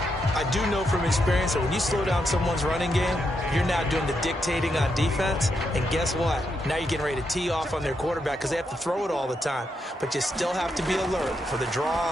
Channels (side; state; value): both; normal; correlation 0.82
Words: I do know from experience that when you slow down someone's running game, you're now doing the dictating on defense. And guess what? Now you're getting ready to tee off on their quarterback because they have to throw it all the time. But you still have to be alert for the